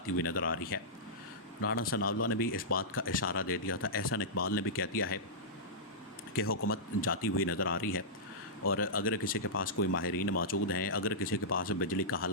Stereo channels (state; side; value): normal; both; correlation -0.14